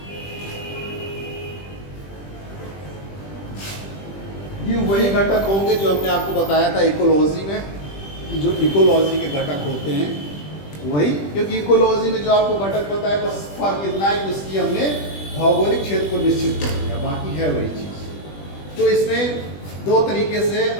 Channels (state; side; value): late; right; 20 ms